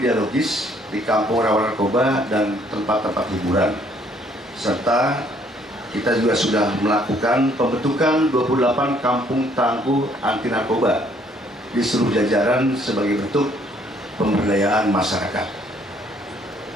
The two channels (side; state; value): both; normal; correlation 0.64